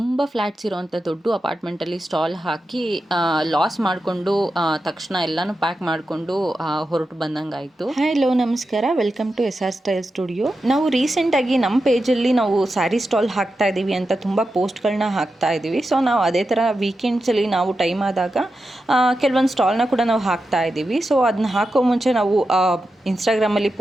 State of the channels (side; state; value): both; normal; correlation 0.90